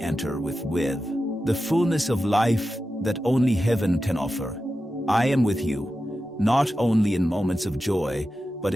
with the fullness of life that only heaven can offer. I am with you, not only in moments of joy, but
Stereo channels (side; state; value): both; normal; correlation 0.91